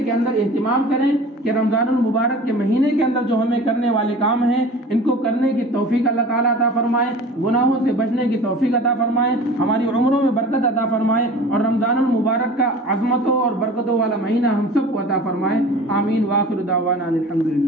اندر اہتمام کریں کہ رمضان المبارک کے مہینے کے اندر جو ہمیں کرنے والے کام ہیں ان کو کرنے کی توفیق اللہ تعالیٰ عطا فرمائے، گناہوں سے بچنے کی توفیق عطا فرمائے، ہماری عمروں میں برکت عطا فرمائے، اور رمضان المبارک کا عظمتوں اور برکتوں والا مہینہ ہم سب کو عطا فرمائے. آمین. وآخر دعوانا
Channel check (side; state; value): both; normal; correlation 0.41